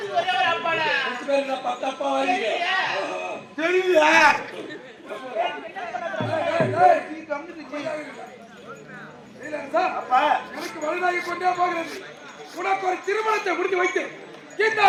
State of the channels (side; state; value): both; identical; correlation 1.00